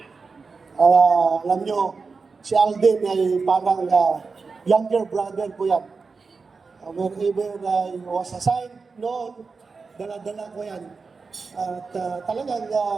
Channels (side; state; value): left; quieter; 4.6 dB